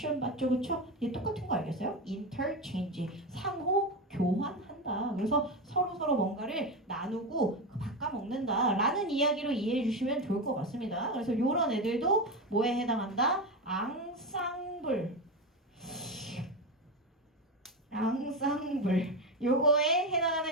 맞죠? 그쵸? 얘 똑같은 거 알겠어요? interchange 상호 교환한다. 그래서 서로 뭔가를 나누고 바꿔먹는다 라는 이야기로 이해해 주시면 좋을 것 같습니다. 그래서 이런 애들도 뭐에 해당한다? 앙상블 요거에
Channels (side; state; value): both; normal; correlation 0.17